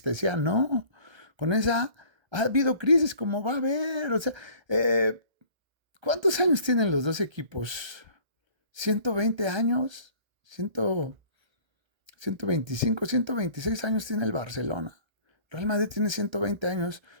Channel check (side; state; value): left; late; 1.3 ms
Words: no. Con esa ha habido crisis como va a haber, o sea, ¿cuántos años tienen los dos equipos? ¿120 años? 125, 126 años tiene el Barcelona. Real Madrid tiene 120 años,